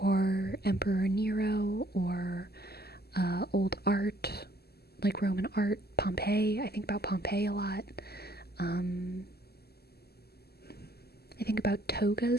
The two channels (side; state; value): right; late; 0.46 ms